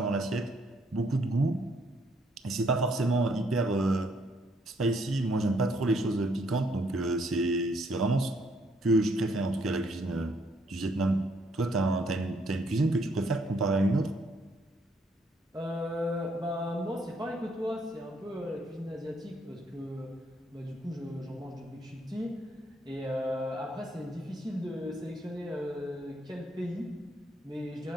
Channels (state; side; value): normal; both; correlation 0.69